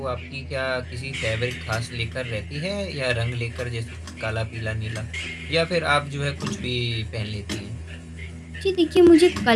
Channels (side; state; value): both; identical; correlation 1.00